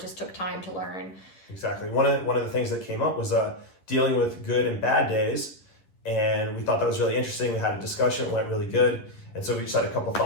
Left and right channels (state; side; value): late; right; 11 ms